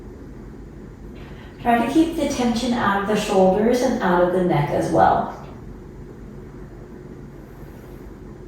Try to keep the tension out of the shoulders and out of the neck as well.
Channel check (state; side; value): identical; both; correlation 1.00